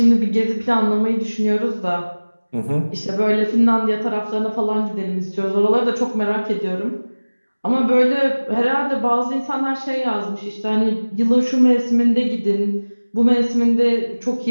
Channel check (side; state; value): both; inverted; correlation -1.00